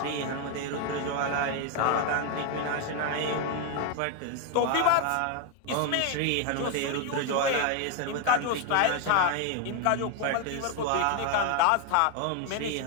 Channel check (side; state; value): both; different; correlation 0.01